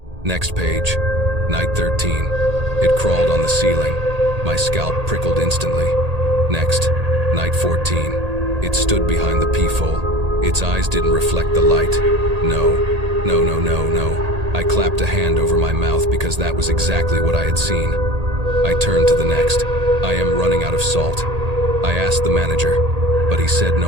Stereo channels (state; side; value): late; left; 1.8 ms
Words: Next page, night 13. It crawled on the ceiling. My scalp prickled instantly. Next, night 14. It stood behind the peephole. Its eyes didn't reflect the light. No. I clapped a hand over my mouth because that was exactly what I had seen. I turned to the next. I am running out of salt. I asked the manager, but he said